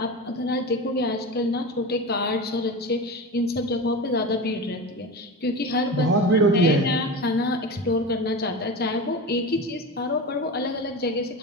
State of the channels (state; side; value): normal; both; correlation 0.27